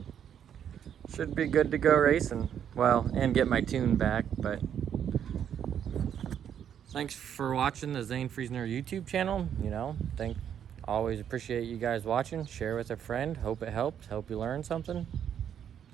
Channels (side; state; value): left; quieter; 9.0 dB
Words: should be good to go racing. Well, and get my tune back. But thanks for watching the Zane Friesner YouTube channel. You know, always appreciate you guys watching. Share with a friend. Hope it helps. Hope you learned something.